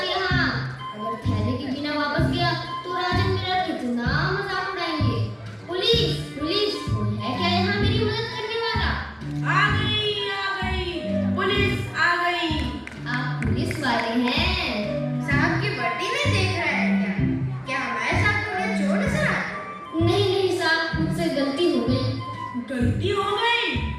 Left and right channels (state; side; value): identical; both; correlation 1.00